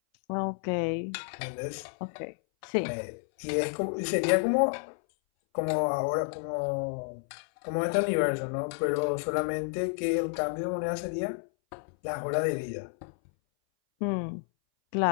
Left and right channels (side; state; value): right; silent; 57 dB below the other